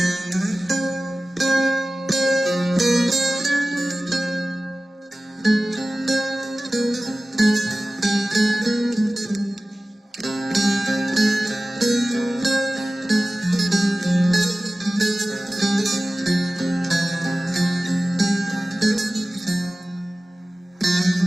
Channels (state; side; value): normal; both; correlation 0.96